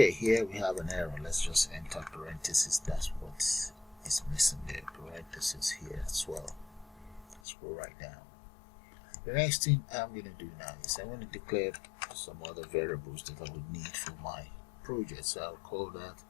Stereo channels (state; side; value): drops out; right; at 7.4 s